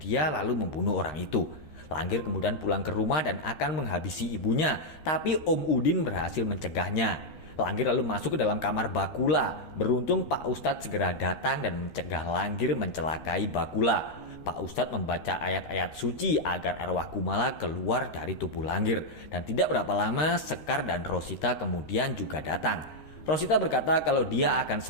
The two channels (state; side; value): late; right; 13 ms